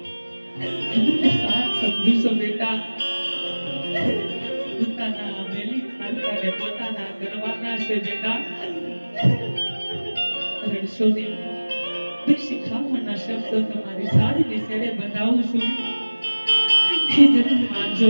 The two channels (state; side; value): inverted; both; correlation -1.00